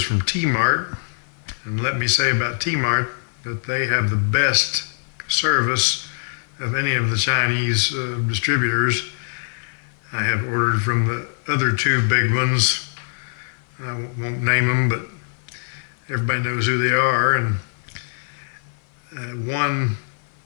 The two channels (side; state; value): right; silent; 55 dB below the other